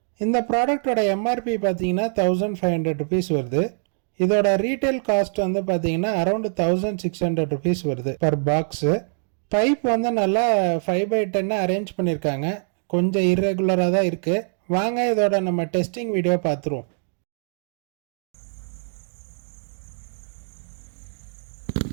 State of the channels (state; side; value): silent; left; digital silence